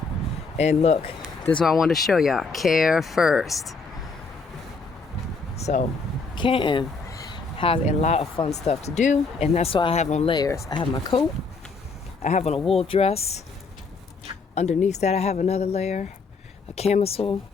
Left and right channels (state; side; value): quieter; right; 4.3 dB